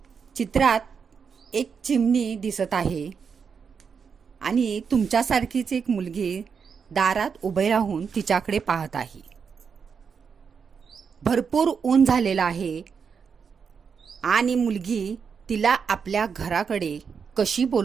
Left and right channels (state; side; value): quieter; left; 6.2 dB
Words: चित्रात एक चिमणी दिसत आहे आणि तुमच्यासारखीच एक मुलगी दारात उभे राहून तिच्याकडे पाहत आहे. भरपूर ऊन झालेलं आहे आणि मुलगी तिला आपल्या घराकडे कशी